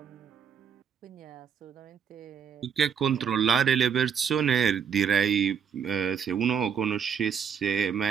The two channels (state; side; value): quieter; left; 7.4 dB